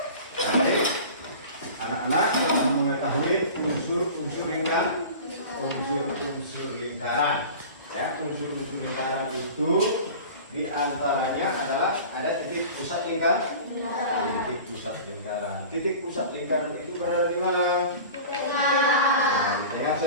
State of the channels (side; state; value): both; inverted; correlation -0.37